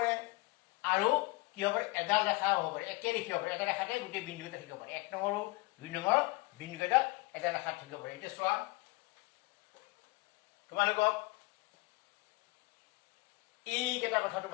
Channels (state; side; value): quieter; right; 24.6 dB